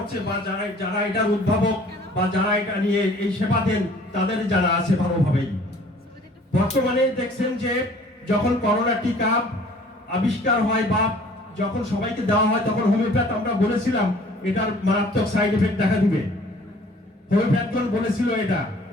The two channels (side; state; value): both; normal; correlation 0.53